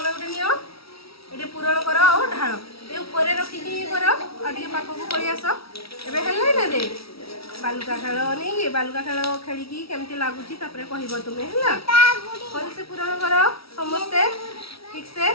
ये पूरण कर और ढाल ये ऊपर रखिकी कर आगे पाख को पड़ी आस एबे हेल्ले ना रे बालुका खेल नहीं बालुका खेल खेलिकी केमती लगुची तापरे कहबो तुमे हला भल से पूरण कर समस्ते ठीक से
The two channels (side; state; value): right; late; 0.75 ms